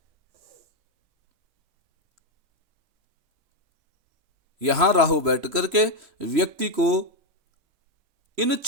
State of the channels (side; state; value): left; late; 3.0 ms